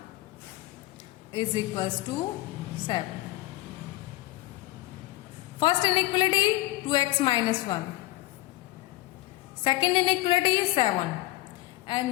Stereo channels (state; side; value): quieter; right; 17.1 dB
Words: is equals to 7. First inequality 2x minus 1. Second inequality 7.